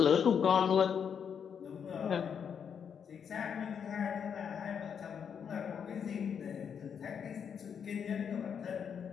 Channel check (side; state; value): right; quieter; 7.4 dB